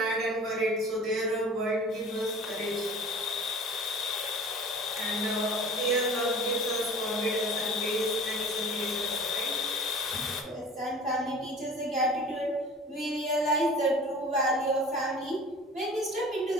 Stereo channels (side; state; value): both; normal; correlation 0.42